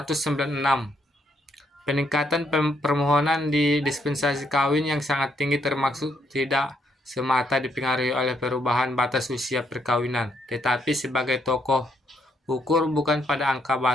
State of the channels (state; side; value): normal; both; correlation 0.74